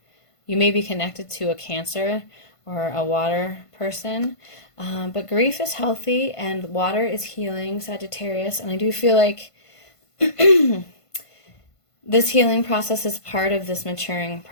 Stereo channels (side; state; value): right; late; 1.5 ms